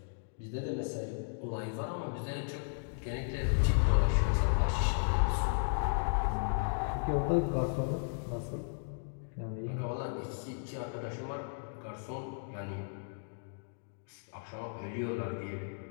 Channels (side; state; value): right; silent; digital silence